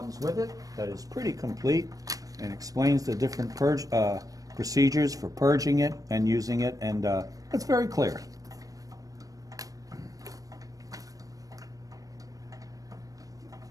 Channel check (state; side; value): late; left; 0.17 ms